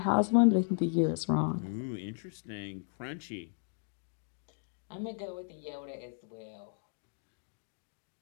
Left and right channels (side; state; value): right; silent; 54 dB below the other